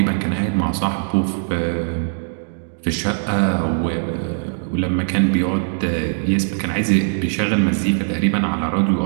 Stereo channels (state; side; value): silent; left; 63 dB below the other